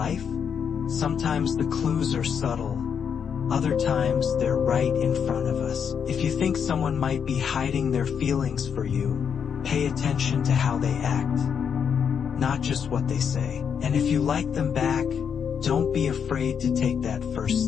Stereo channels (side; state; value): right; quieter; 7.3 dB